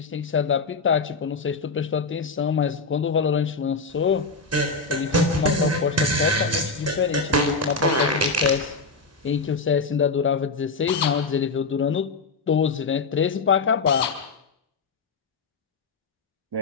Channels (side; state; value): right; quieter; 4.1 dB